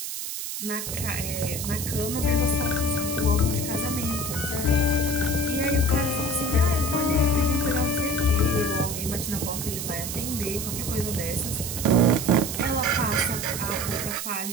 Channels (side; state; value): right; noise; hiss, 5 dB below the sound